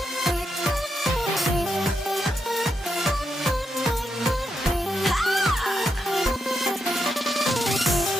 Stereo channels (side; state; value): both; normal; correlation 0.83